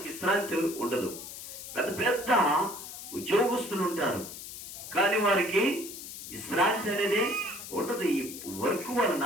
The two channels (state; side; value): noise; left; hiss, 11 dB below the sound